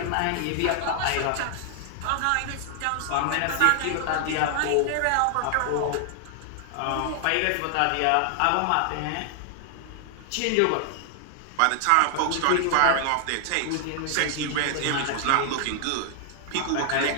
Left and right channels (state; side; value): different; both; correlation 0.00